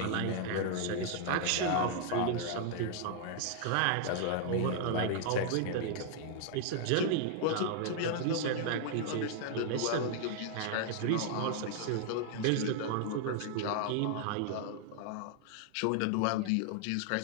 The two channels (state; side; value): different; both; correlation 0.00